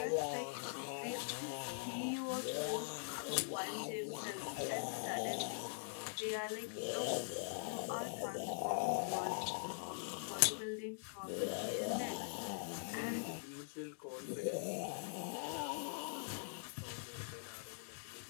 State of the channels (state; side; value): silent; right; digital silence